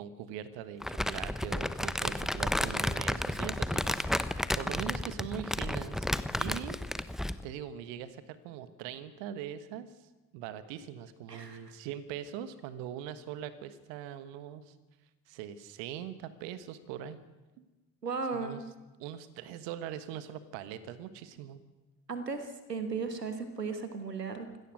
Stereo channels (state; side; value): normal; both; correlation 0.63